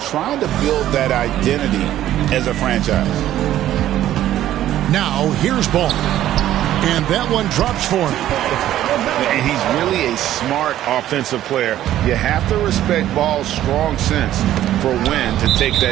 to build that identity as a franchise. Now, here's Ball. And that one drops for him. And he's really a smart offensive player. You have to respect Ball's strong sense for when to take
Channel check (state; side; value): quieter; left; 12.7 dB